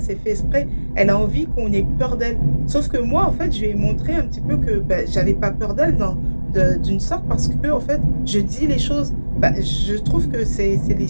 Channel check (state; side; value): inverted; both; correlation -1.00